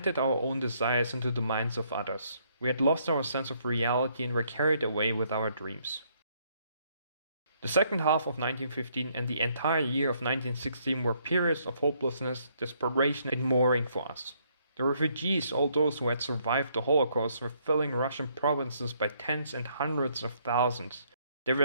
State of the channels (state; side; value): inverted; both; correlation -0.69